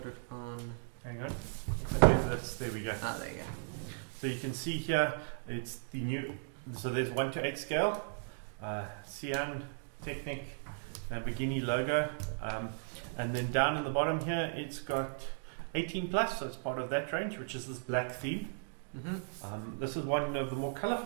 it on. Hang on. There we go. Ah, there you go. So you can see here, it's the new. So there's 1:8 scale, Sián Technic, Lamborghini logo, and then down in the bottom here, it's got 18 plus. So it's part of that range, which is this black theme. This is one of the more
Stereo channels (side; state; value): left; silent; digital silence